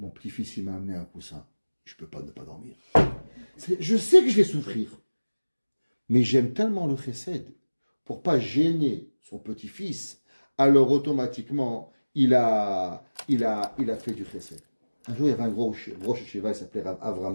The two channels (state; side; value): inverted; both; correlation -1.00